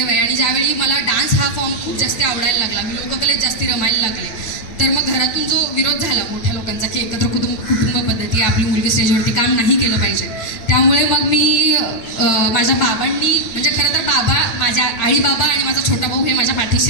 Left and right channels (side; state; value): right; late; 8.8 ms